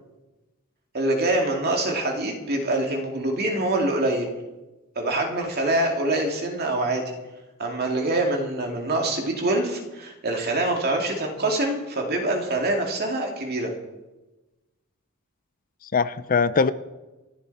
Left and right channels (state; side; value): normal; both; correlation 0.09